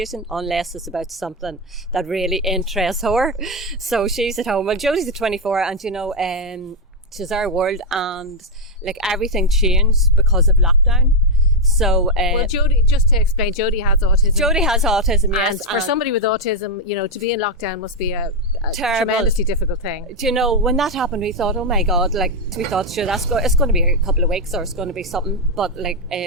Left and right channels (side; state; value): both; normal; correlation 0.02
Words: unless it's about something that really interests her. So she's at home. Well, Jodie's at 24, and she's our world, and like everything changed because of lockdown. So, well, Jodie, just to explain, Jodie has autism. Jodie has autism, yes. And for somebody with autism, to be in lockdown must be a tremendously difficult thing. When that happened, we thought, oh my God, sure, it's going to be a couple of weeks or it's going to be something. But